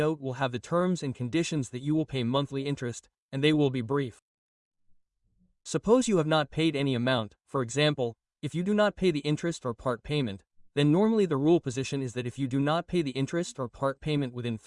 will have the terms and conditions that you will pay monthly interest, and they will be brief. Suppose you have not paid any amount, for example, if you do not pay the interest or part payment, then normally the rule position is that if you do not pay the interest or part payment within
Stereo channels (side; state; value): both; identical; correlation 1.00